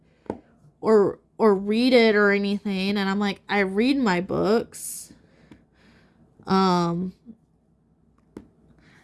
or read it or anything. And I'm like, I read my books. And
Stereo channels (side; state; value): both; identical; correlation 1.00